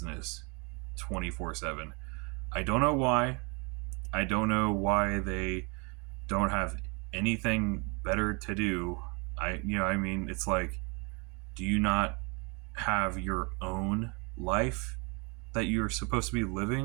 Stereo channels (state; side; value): quieter; left; 31.8 dB